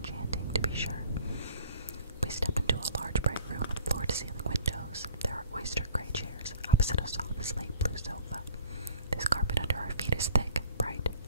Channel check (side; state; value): both; inverted; correlation -0.48